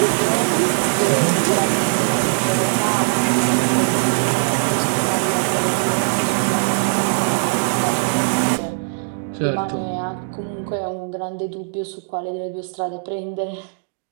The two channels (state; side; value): silent; left; digital silence